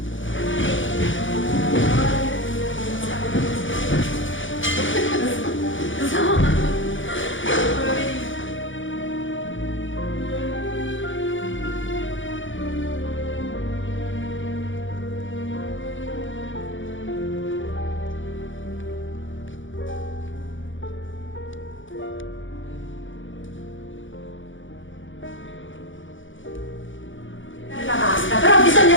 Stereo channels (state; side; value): late; right; 0.56 ms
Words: La pasta, però bisogna